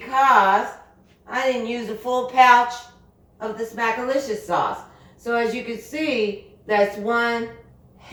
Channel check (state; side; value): identical; both; correlation 1.00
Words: I didn't use a full pouch of the Smackalicious sauce. So as you can see, that's 1